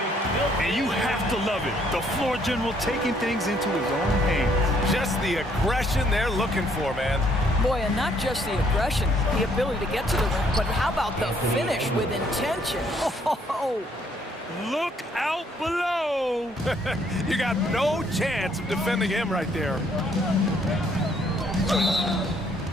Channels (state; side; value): normal; both; correlation 0.67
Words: And you have to love it. The floor general taking things into his own hands. Just the aggression they're looking for, man. Boy, and not just the aggression, the ability to get to the rim, but how about the finish with intention? Oh, look out below! You got no chance of defending him right there.